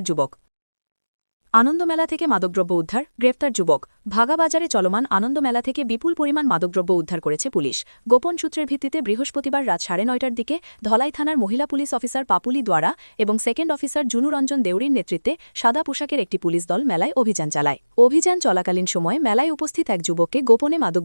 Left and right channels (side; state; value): both; inverted; correlation -1.00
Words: যুবক। আনন্দমেলা থেকে মাদকদ্রব্য উদ্ধার, গ্রেপ্তার যুবক। ভাগা বাজারে চলমান আনন্দমেলা থেকে বিপুল পরিমাণ মাদকদ্রব্য উদ্ধার করেছে পুলিশ। গোপন সূত্রের ভিত্তিতে বৃহস্পতিবার রাত 9:30টার দিকে ধলাই থানার মহিলা পুলিশ অফিসার পাপুলি দ্বারা এবং সেকেন্ড অফিসার জুনুরঞ্জন দেউরির নেতৃত্বে সাদা পোশাকের একটি পুলিশ দল মেলায় অভিযান চালায়। অভিযান চলাকালীন সময়ে মেলায় উপস্থিত এক যুবককে গোপনে মাদক